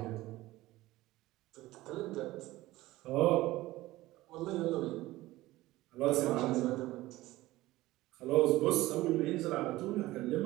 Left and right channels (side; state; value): left; quieter; 17.7 dB